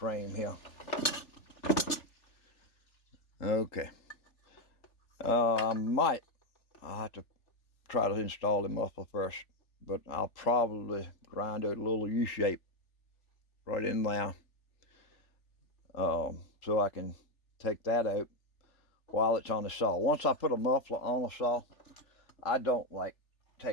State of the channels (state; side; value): late; right; 3.4 ms